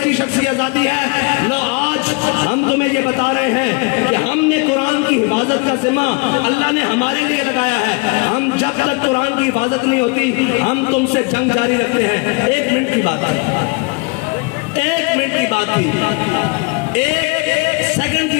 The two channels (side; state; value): right; quieter; 29.7 dB